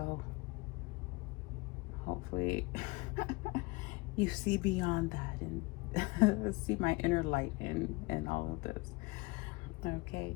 hopefully you see beyond that and see my inner light in all of this. Okay,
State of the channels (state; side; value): quieter; right; 24.9 dB